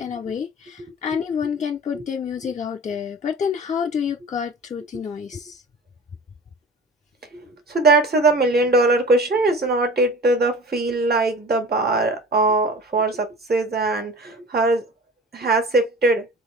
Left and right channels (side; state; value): both; normal; correlation 0.39